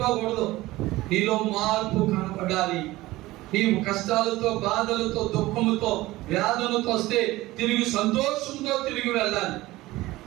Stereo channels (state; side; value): quieter; left; 18.3 dB